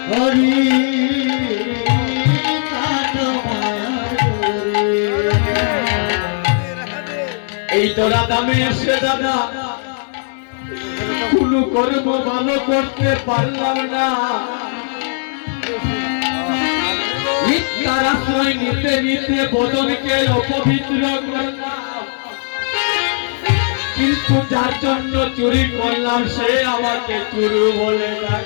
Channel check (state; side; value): silent; right; 68 dB below the other